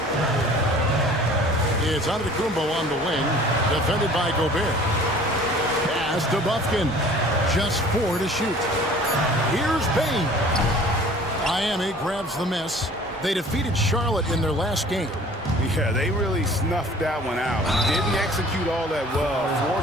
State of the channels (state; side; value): normal; both; correlation 0.49